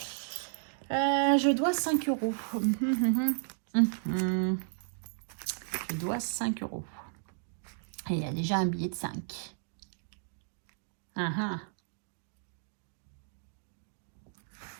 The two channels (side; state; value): left; silent; digital silence